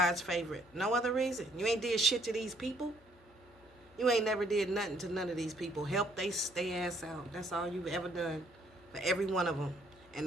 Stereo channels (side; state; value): left; noise; hum, 27 dB below the sound